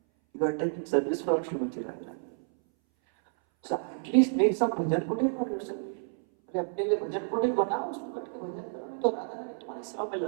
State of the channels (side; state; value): left; silent; 58 dB below the other